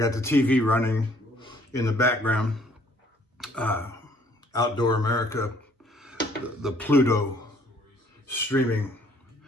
the TV running in the background. Outdoor America, the Pluto streaming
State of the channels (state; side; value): normal; both; correlation 0.61